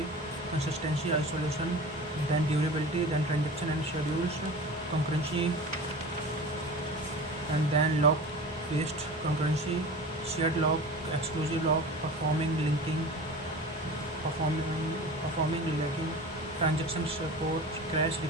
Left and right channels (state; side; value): normal; both; correlation 0.35